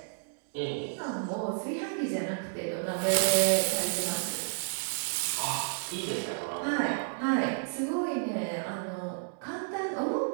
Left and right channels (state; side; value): silent; left; digital silence